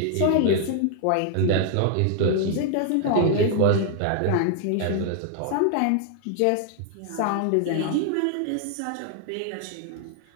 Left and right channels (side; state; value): both; different; correlation 0.00